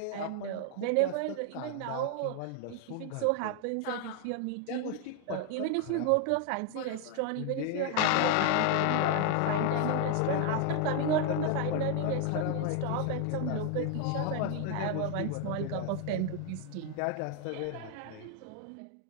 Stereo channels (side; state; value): both; different; correlation 0.00